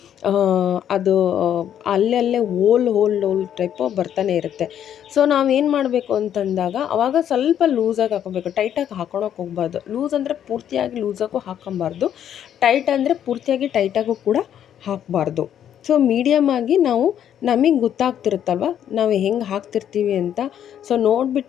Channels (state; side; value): quieter; right; 9.9 dB